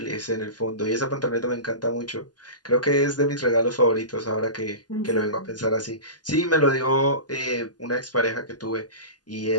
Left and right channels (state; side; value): late; right; 0.69 ms